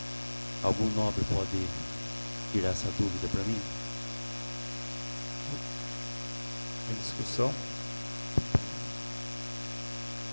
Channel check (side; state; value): both; inverted; correlation -1.00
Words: Algum nobre pode tirar essa dúvida para mim? Em discussão.